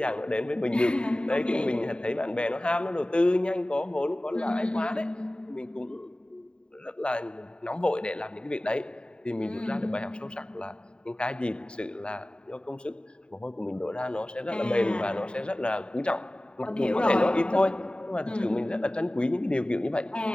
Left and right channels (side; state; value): right; late; 0.051 ms